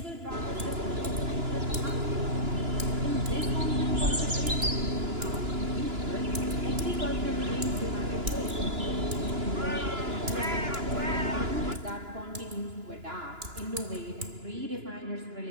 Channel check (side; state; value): left; late; 2.9 ms